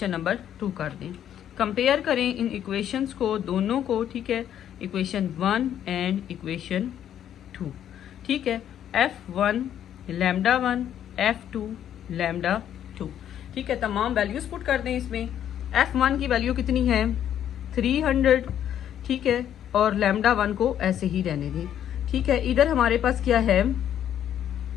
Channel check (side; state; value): right; quieter; 10.2 dB